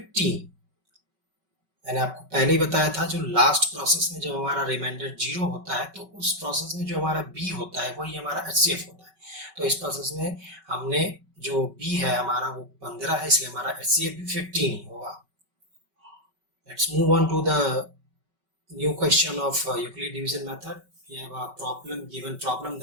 मैंने आपको पहले ही बताया था, जो last process में जब हमारा reminder 0 होता है तो उस प्रोसेस में जो हमारा B होता है वही हमारा HCF होता है। तो इस प्रोसेस में हमने जो B है हमारा वो 15 है, इसलिए हमारा HCF भी 15 ही होगा। Let's move on to the new question of Euclid division method. We have a given problem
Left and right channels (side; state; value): left; late; 5.3 ms